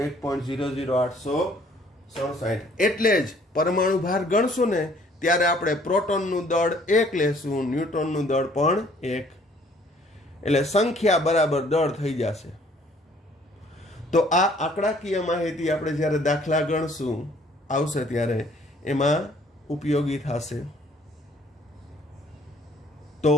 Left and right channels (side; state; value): both; normal; correlation 0.59